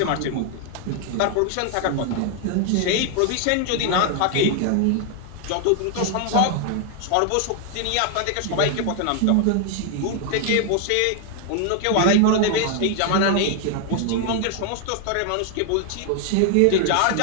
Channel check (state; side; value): different; both; correlation 0.00